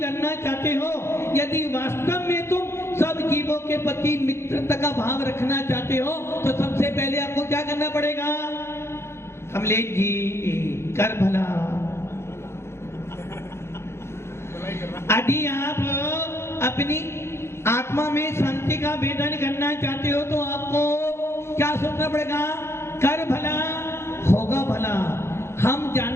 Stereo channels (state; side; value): late; right; 0.12 ms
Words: चाहते हो, यदि वास्तव में तुम सब जीवों के प्रति मित्रता का भाव रखना चाहते हो, तो सबसे पहले आपको क्या करना पड़ेगा? कमलेश जी कर भला अपनी आत्मा में शांति का वेदन करना चाहते हो तो आपको क्या सोचना पड़ेगा? कर भला होगा भला। हम